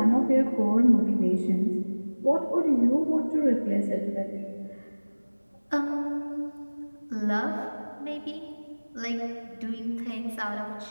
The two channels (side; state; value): both; inverted; correlation -1.00